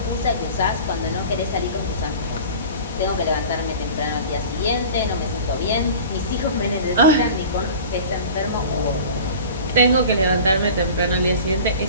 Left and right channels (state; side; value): inverted; both; correlation -0.39